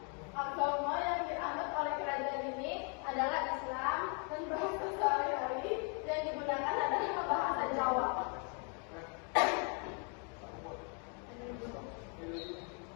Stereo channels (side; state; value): right; quieter; 38.4 dB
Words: Agama yang dianut oleh kerajaan ini adalah Islam dan bahasa sehari-hari yang digunakan adalah bahasa Jawa.